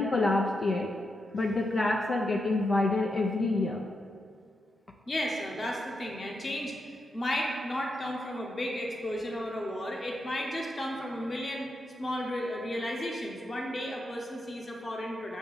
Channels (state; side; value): normal; both; correlation 0.85